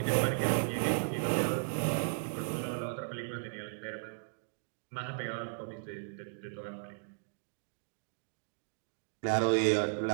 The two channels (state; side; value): silent; left; digital silence